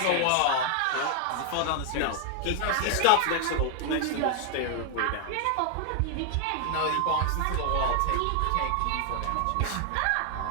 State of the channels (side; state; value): both; different; correlation 0.00